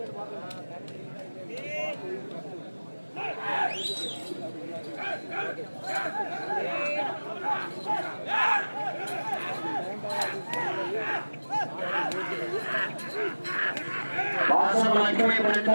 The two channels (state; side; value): inverted; both; correlation -1.00